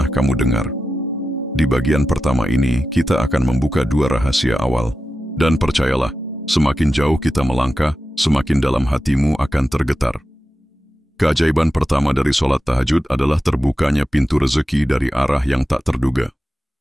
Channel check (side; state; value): both; normal; correlation 0.92